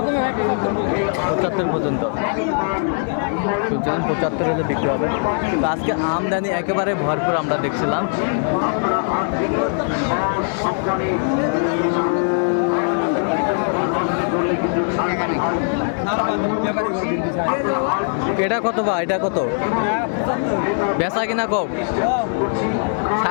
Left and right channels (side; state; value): right; silent; 65 dB below the other